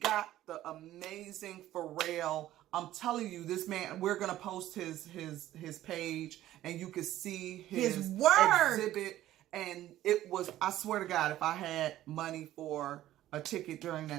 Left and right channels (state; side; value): quieter; left; 13.9 dB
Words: the amazing Pharrell. I'm telling you, this man, we're going to post his page, and you can see his work exhibit. And it was, I swear to God, if I had money for a ticket during